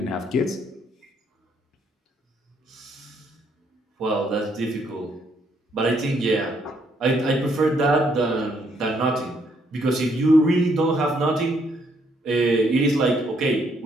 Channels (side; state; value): both; normal; correlation 0.71